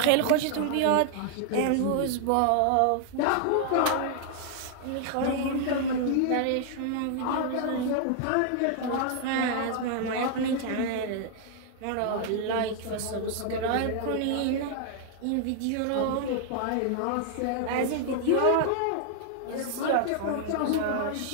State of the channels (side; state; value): both; different; correlation 0.00